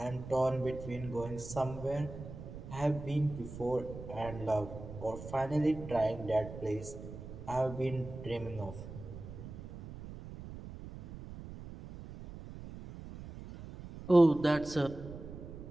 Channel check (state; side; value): noise; right; rumble, 12 dB below the sound